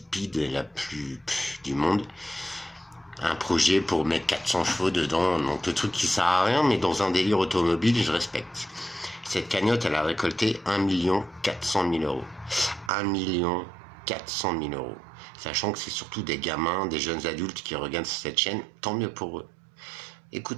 et la plus du monde. Un projet pour mettre 400 chevaux dedans, donc le truc qui sert à rien, mais dans un délire automobile, je respecte. Cette cagnotte, elle a récolté 1 400 000 €. 1 400 000 €. Sachant que c'est surtout des gamins, des jeunes adultes qui regardent cette chaîne, tant mieux pour eux.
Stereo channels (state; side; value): drops out; left; at 12.9 s